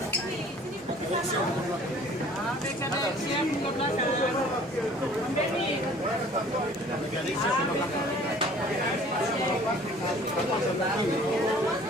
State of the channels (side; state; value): both; normal; correlation 0.51